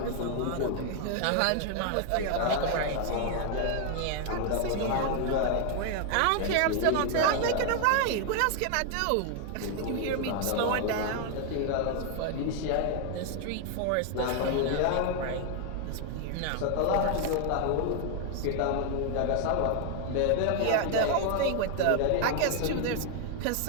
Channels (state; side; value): different; both; correlation 0.00